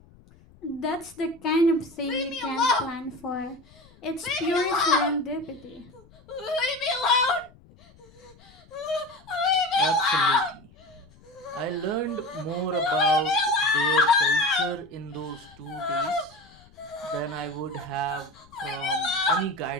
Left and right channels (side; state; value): left; noise; rumble, 26 dB below the sound